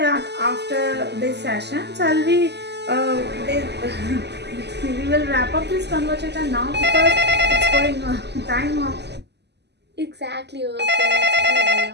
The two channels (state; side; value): late; left; 0.50 ms